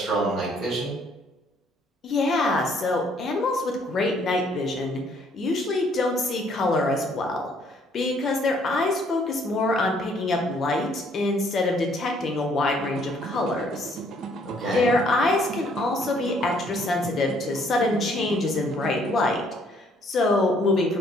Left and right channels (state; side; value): normal; both; correlation 0.64